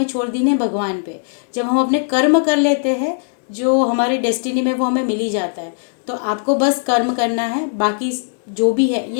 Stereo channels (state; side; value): silent; right; digital silence